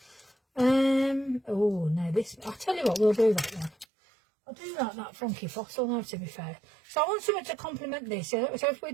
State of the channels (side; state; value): left; drops out; at 3.9 s